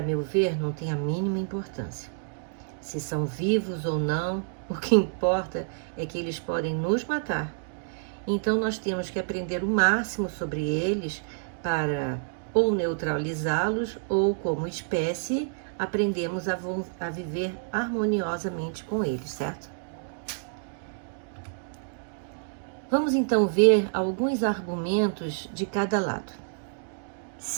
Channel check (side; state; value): left; silent; digital silence